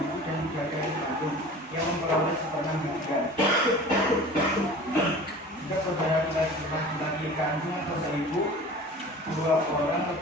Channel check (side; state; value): both; normal; correlation 0.40